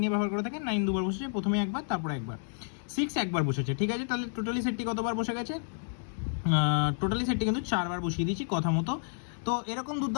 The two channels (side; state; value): right; silent; digital silence